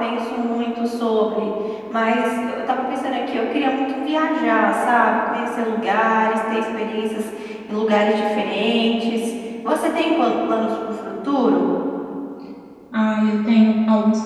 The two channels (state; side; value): identical; both; correlation 1.00